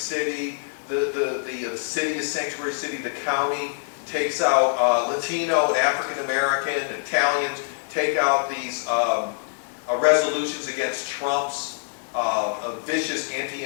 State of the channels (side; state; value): right; silent; 62 dB below the other